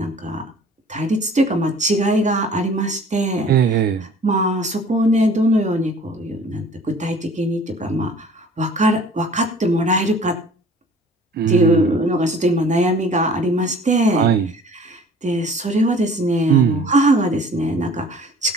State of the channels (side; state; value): both; normal; correlation 0.49